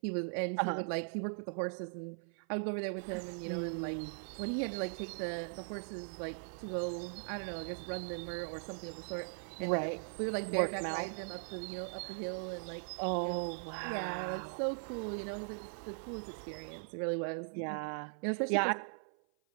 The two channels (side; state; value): left; silent; 51 dB below the other